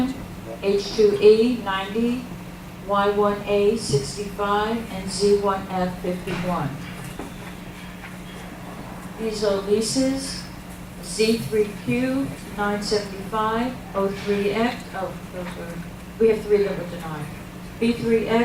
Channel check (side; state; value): both; identical; correlation 1.00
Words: H2E, 90, Y1A, 65, and Z1F, 51. These are leases. Z3Q, 975, O3X, oh, those were, we have 3 that were denied.